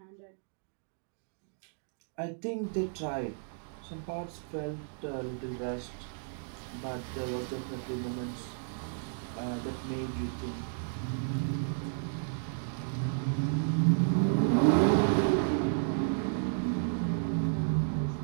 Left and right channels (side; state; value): left; silent; digital silence